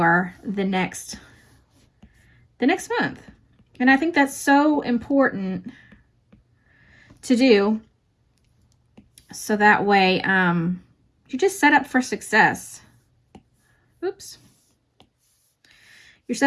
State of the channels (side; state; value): both; identical; correlation 1.00